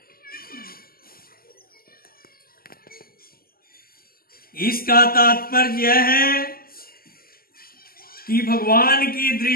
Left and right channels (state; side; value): late; right; 0.43 ms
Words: इसका तात्पर्य यह है कि भगवान की